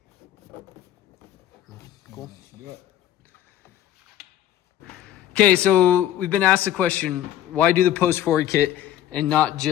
Cool. Do it. Okay, so we've been asked the question, why do the post forward kit and not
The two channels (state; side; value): quieter; right; 12.1 dB